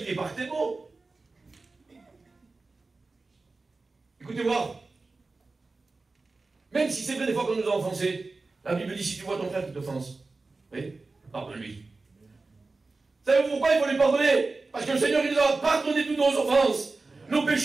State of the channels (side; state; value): left; quieter; 3.6 dB